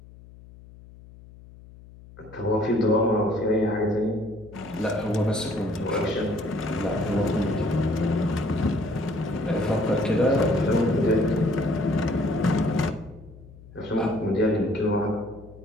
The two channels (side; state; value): left; noise; hum, 20 dB below the sound